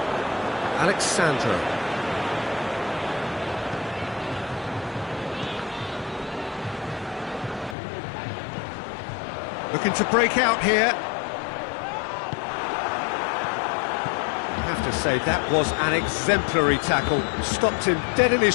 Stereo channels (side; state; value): right; drops out; at 7.8 s